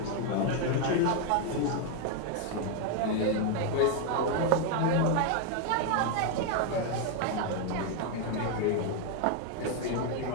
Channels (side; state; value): both; different; correlation 0.01